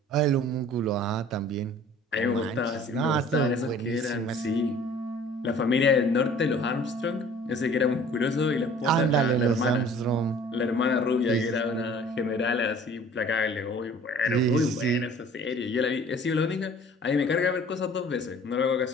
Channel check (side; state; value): both; normal; correlation 0.50